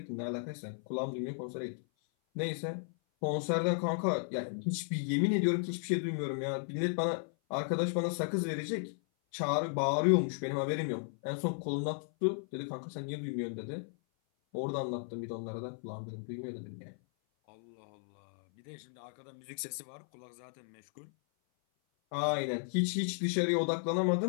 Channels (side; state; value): right; silent; 55 dB below the other